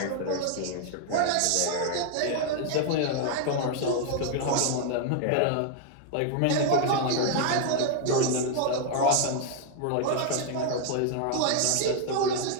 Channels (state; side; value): different; both; correlation 0.00